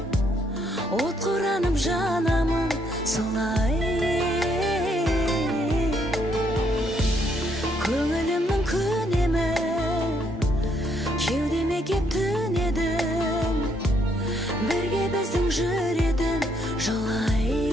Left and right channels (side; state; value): both; normal; correlation 0.72